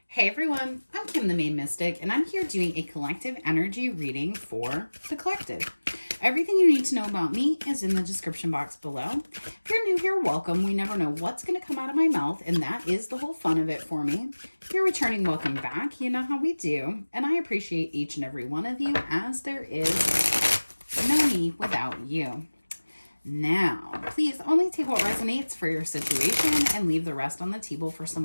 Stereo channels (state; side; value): inverted; both; correlation -1.00